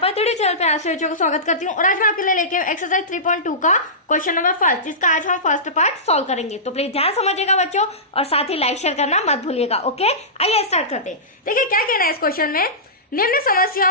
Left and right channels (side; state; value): both; normal; correlation -0.19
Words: थ्योरी चैनल पे आप सभी को स्वागत करती हूँ और आज मैं आपके लिए लेके एक्सरसाइज 3.2 का क्वेश्चन नंबर फर्स्ट, जिसका आज हम फर्स्ट पार्ट सॉल्व करेंगे। तो प्लीज ध्यान समझिएगा बच्चों और साथ ही लाइक शेयर करना मत भूलिएगा। ओके, आइए स्टार्ट करते हैं। देखिए क्या कहना है इस क्वेश्चन में। निम्न